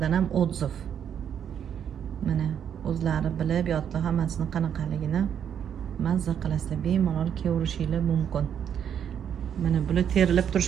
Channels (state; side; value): quieter; left; 8.6 dB